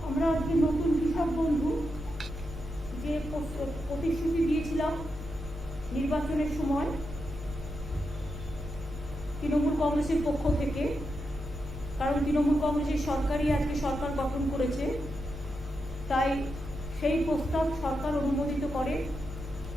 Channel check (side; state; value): both; normal; correlation 0.86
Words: আমরা আজকে নতুন কৃষক বন্ধু যে প্রতিশ্রুতি দিয়েছিলাম নির্বাচনের সময় তৃণমূল কংগ্রেসের পক্ষ থেকে, কারণ তৃণমূল কংগ্রেসের সরকারই আজকে সরকার গঠন করেছে, তাই সেই প্রস্তাব সরকার অনুমোদিত করে